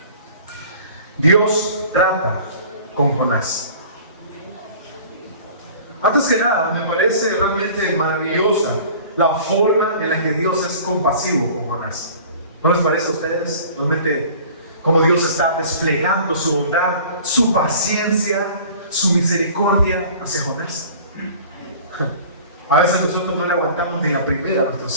Dios trata con Jonás. Antes que nada, me parece realmente maravillosa la forma en la que Dios es compasivo con Jonás. ¿No les parece a ustedes? Realmente, cómo Dios está desplegando su bondad, su paciencia, su misericordia hacia Jonás. A veces nosotros no le aguantamos ni la primera a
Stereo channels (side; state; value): both; inverted; correlation -0.46